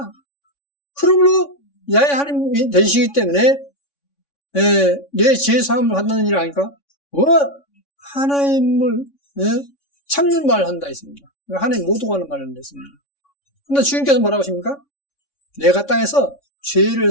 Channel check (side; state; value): right; late; 3.5 ms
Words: 그러므로 야훼 하나님이 되시기 때문에 내 죄사함을 받는 일 아니까 하나님을 참는 말을 한다 했습니다. 하나님 모두가 하는 말을 한다 했습니다. 그런데 주님께서 뭐라고 하십니까? 내가 땅에서 죄를